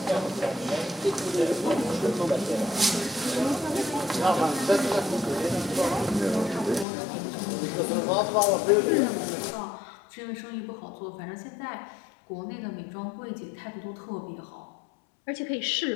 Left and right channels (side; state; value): right; drops out; at 6.9 s